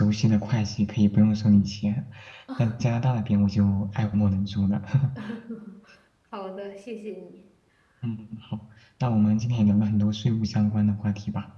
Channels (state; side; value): identical; both; correlation 1.00